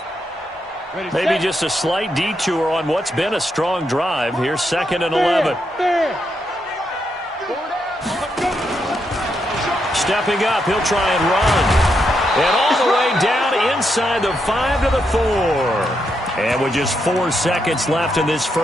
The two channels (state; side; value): normal; both; correlation 0.81